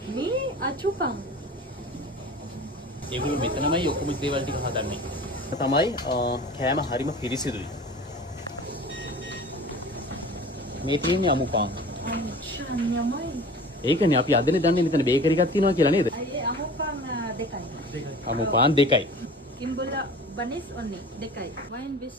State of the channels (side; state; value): both; normal; correlation 0.40